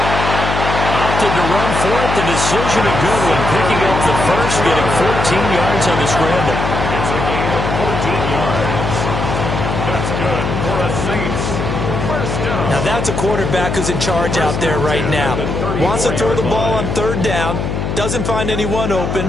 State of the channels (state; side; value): noise; left; hum, 3 dB below the sound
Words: Opted to run for it. The decision a good one. Picking up the first, getting 14 yards on the scramble. It's a gain of 14 yards. That's good for a Saints first down. Now that's a quarterback who's in charge out there right now. Wants to throw the ball on 3rd down. Doesn't find anyone